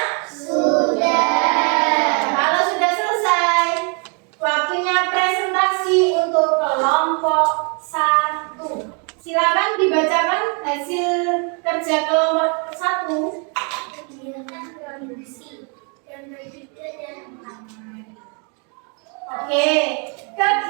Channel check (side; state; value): left; quieter; 36.9 dB